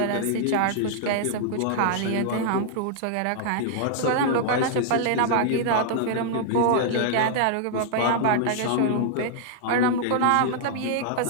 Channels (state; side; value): different; both; correlation -0.01